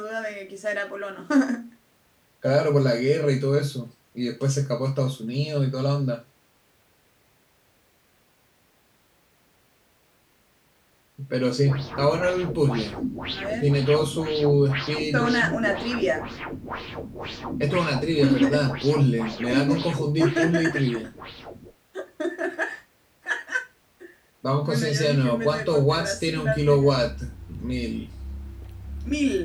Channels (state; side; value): identical; both; correlation 1.00